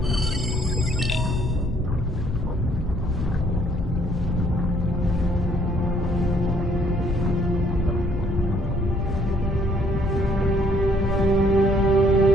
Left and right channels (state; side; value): normal; both; correlation 0.65